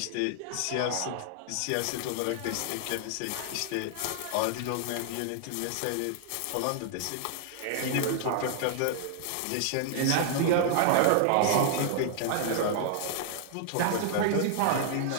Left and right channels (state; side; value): different; both; correlation -0.01